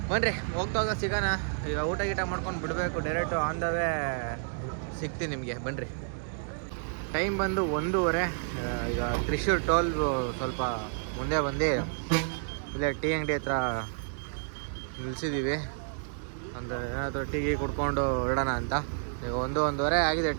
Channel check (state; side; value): silent; left; digital silence